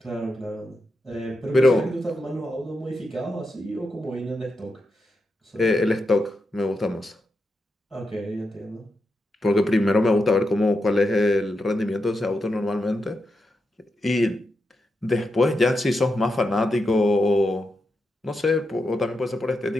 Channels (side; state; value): both; normal; correlation 0.86